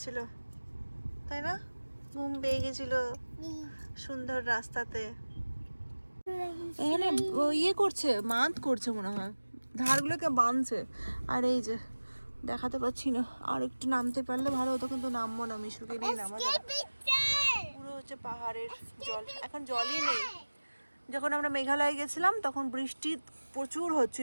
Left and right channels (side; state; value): both; inverted; correlation -1.00